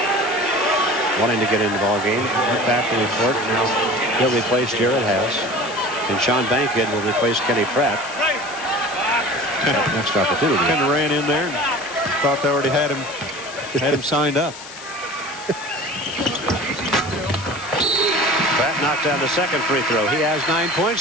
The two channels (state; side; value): noise; left; hiss, 15 dB below the sound